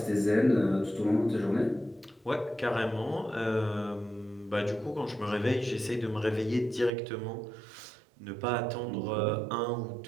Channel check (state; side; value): drops out; left; at 6.9 s